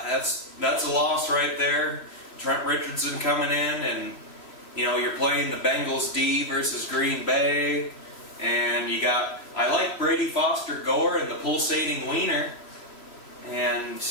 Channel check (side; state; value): right; late; 3.0 ms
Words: that's a loss right there. Trent Richardson coming in, and you know, you're playing the Bengals D versus Green Bay, and I like Brady Foster Gore and the pulsating wiener,